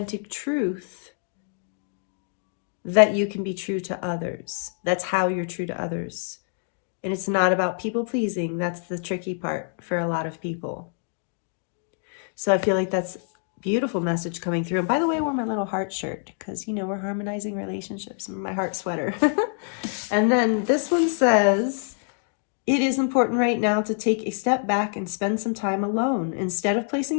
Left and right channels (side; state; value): right; silent; 61 dB below the other